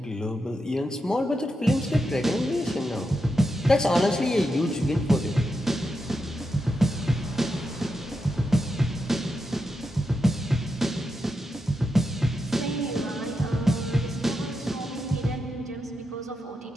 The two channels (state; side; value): normal; both; correlation 0.86